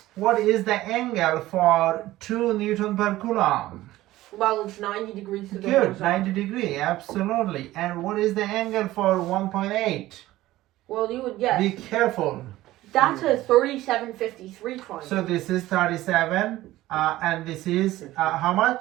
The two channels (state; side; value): quieter; left; 16.3 dB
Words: what is the angle for 2 Newton per coulomb? Well, it's 90 degrees to the Good, horizontal. 90 degree, absolutely. And what is the angle for 1.8? Well, you would guess. Be careful. That's a 3753 triangle. So this is 37, and this is how